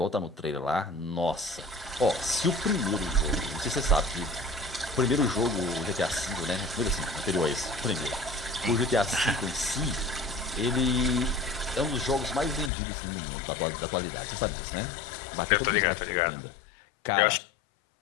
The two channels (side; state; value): right; drops out; at 12.7 s